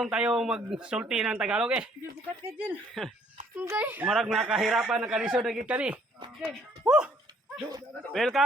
tayo magsulti ng Tagalog eh. Bukat ka dyan. Marag nakahirapan na kalisod na gid kani. Woo!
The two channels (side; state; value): both; normal; correlation 0.63